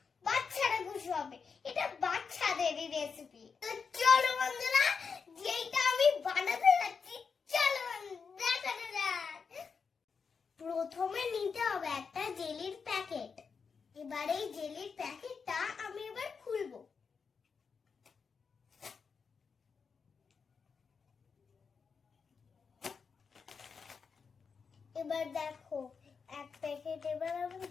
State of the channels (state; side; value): quieter; right; 5.6 dB